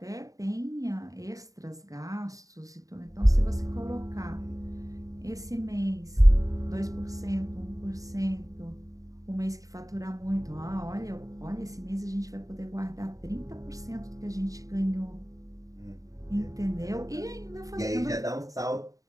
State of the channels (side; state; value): left; late; 0.17 ms